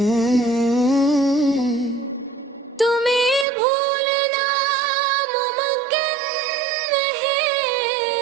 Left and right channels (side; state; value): left; drops out; at 3.5 s